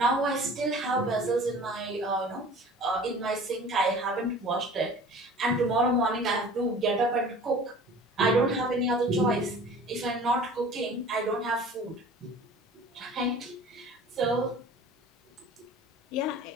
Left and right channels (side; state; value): both; normal; correlation 0.44